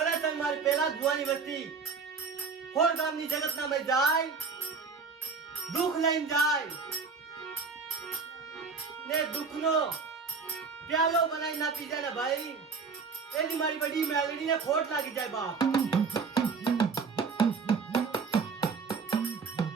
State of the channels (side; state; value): left; quieter; 5.1 dB